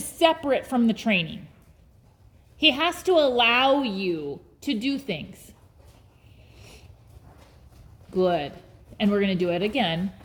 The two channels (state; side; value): identical; both; correlation 1.00